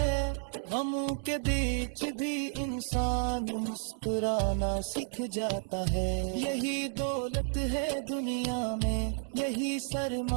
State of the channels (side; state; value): left; silent; 57 dB below the other